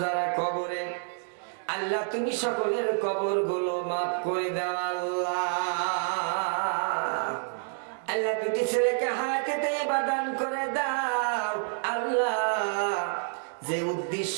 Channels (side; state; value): left; silent; 59 dB below the other